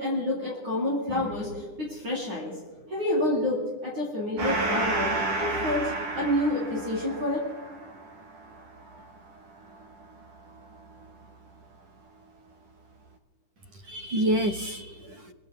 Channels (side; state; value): left; late; 10 ms